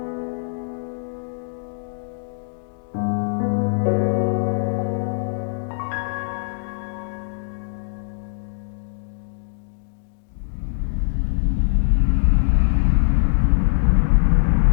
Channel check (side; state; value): right; silent; digital silence